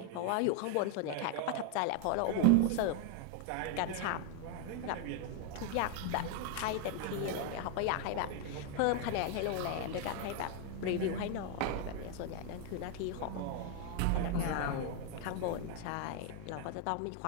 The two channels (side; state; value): both; different; correlation 0.00